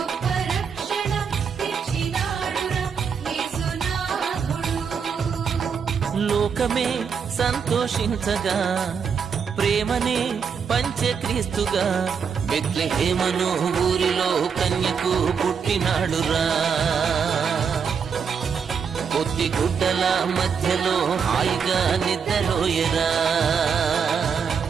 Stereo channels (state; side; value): quieter; left; 6.4 dB